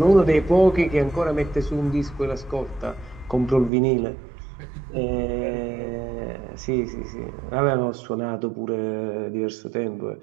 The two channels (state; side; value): drops out; left; at 3.7 s